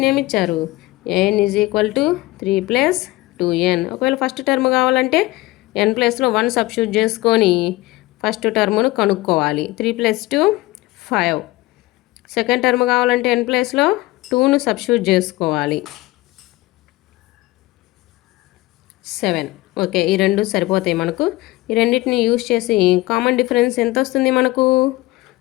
ఏమి ఇచ్చారు? an is equal to 3 + 2n. ఒకవేళ ఫస్ట్ టర్మ్ కావాలంటే n ప్లేస్లో 1 సబ్స్టిట్యూట్ చేసుకొని ఫస్ట్ టర్మ్ను కనుక్కోవాలి. 3 + 2 5. సెకండ్ టర్మ్ కావాలంటే n ప్లేస్లో 2ను సబ్స్టిట్యూట్ చేసుకోవాలి. 7. ఓకే, ఈ రెండు సరిపోతాయి మనకు. ఈ రెండింటిని యూజ్ చేసి కామన్ డిఫరెన్స్ ఎంత వస్తుంది మనకు?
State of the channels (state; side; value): quieter; right; 19.5 dB